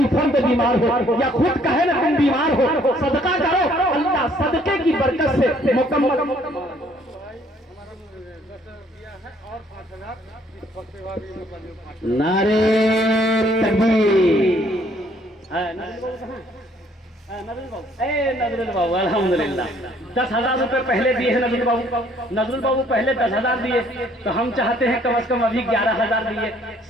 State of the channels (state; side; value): normal; both; correlation 0.63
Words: फर्द बीमार हो या खुद कहे ना तुम बीमार हो, सदका करो, अल्लाह सदके की बरकत से मुकम्मल। नारे तकबीर। नजरुल बाबू अल्हम्दुलिल्लाह 10,000 रुपए पहले दिए हैं नजरुल बाबू। नजरुल बाबू पहले 10,000 दिए, तो हम चाहते हैं कम से कम अभी 11,000 दिए।